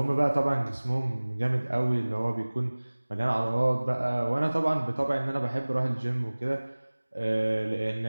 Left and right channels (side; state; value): both; inverted; correlation -1.00